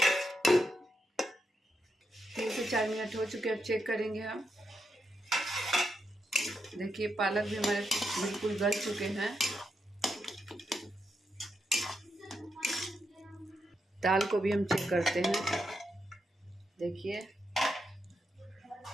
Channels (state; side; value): normal; both; correlation 0.83